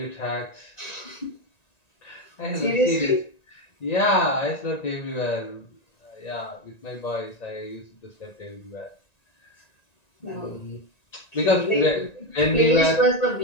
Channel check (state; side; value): late; right; 1.9 ms